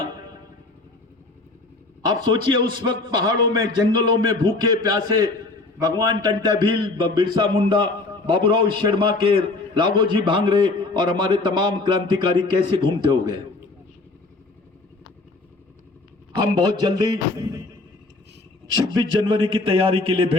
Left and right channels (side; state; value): right; quieter; 3.3 dB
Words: आप सोचिए उस वक्त पहाड़ों में, जंगलों में भूखे प्यासे भगवान टंटा भील, बिरसा मुंडा, बाबूराव शर्मा के, राघोजी भांगरे और हमारे तमाम क्रांतिकारी कैसे घूमते हो गए। हम बहुत जल्दी 26 जनवरी की तैयारी के लिए